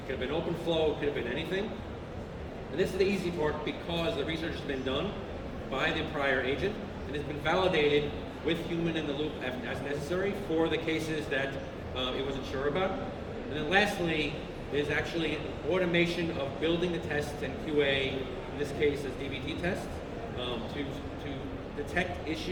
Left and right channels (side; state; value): both; identical; correlation 1.00